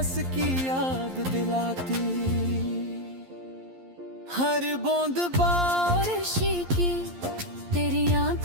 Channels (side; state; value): left; late; 11 ms